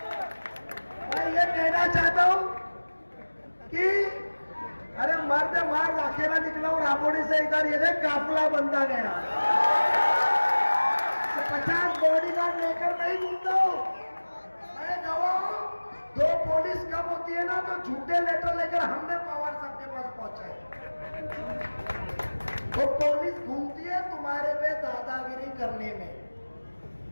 मैं ये कहना चाहता हूं कि अरे मर्द मार अकेला निकला और राबोड़ी से इधर ये देख काफिला बनता गया। 50 बॉडीगार्ड लेकर नहीं घूमता हूं मैं, गवाह हूं। 2 पुलिस कम होती है ना तो झूठे लेटर लेकर हमने पवार साहब के पास पहुंचाए। वो पुलिस घूमती है तुम्हारे पे दादागिरी करने में।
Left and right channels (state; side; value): inverted; both; correlation -1.00